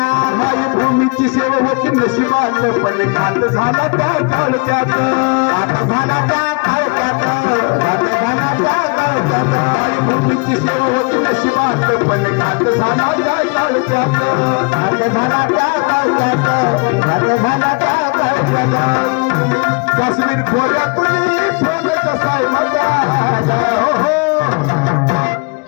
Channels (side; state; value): right; quieter; 33.3 dB